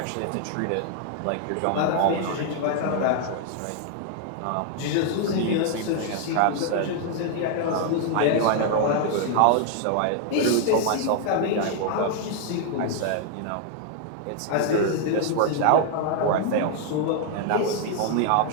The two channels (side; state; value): both; different; correlation 0.00